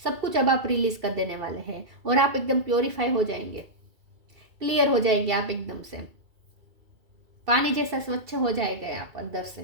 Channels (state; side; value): late; left; 2.3 ms